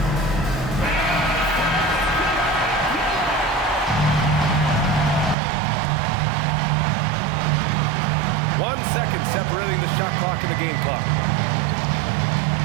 Separating the shot clock and the game clock.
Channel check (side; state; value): left; drops out; at 5.4 s